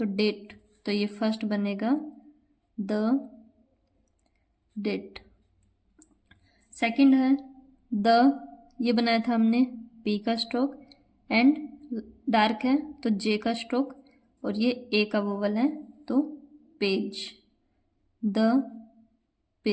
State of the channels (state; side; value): identical; both; correlation 1.00